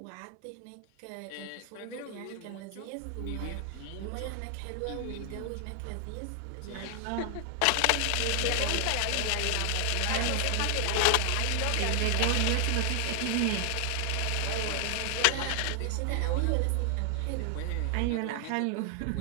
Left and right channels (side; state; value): both; different; correlation 0.00